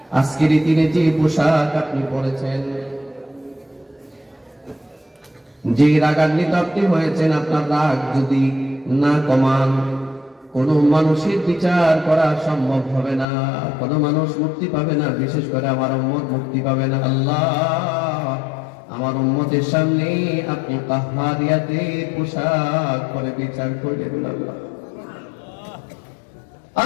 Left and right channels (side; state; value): right; drops out; at 13.2 s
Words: আজকের দিনে যে পোশাক আপনি পরেছেন, যে রাগান্বিত আপনি হয়েছেন, আপনার রাগ যদি না কমান কোন মানুষের বিচার করা সম্ভব হবে না, কোন মানুষ মুক্তি পাবে না, বিশেষ করে আমার উম্মত মুক্তি পাবে না। আল্লাহ আমার উম্মতের সামনে আপনি কাহ্হারিয়াতের পোশাক পরে বিচার করবেন। আল্লাহ